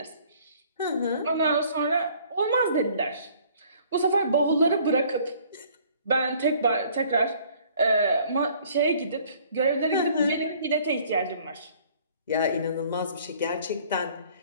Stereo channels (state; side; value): inverted; both; correlation -0.57